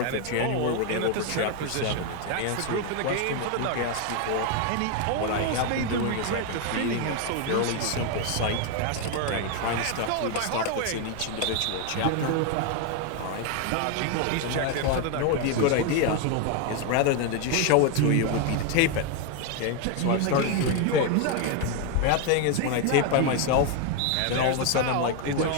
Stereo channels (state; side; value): different; both; correlation 0.01